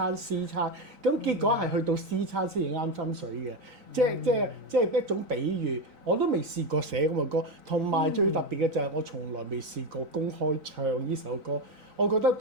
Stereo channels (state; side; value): late; left; 3.9 ms